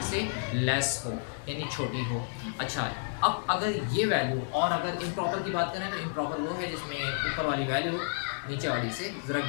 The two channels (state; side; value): silent; right; 57 dB below the other